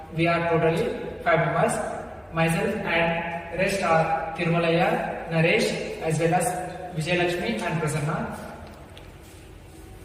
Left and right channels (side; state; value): both; identical; correlation 1.00